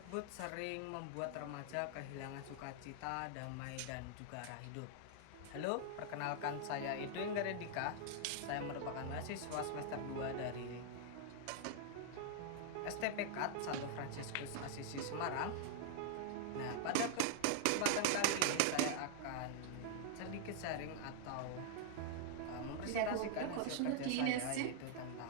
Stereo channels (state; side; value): different; both; correlation 0.00